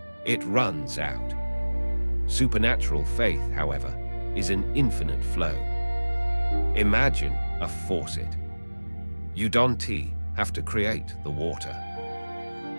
It runs out. Supernatural faith, however, is an infinite flow. Imagine a faucet. You don't have to create the water.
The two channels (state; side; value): inverted; both; correlation -1.00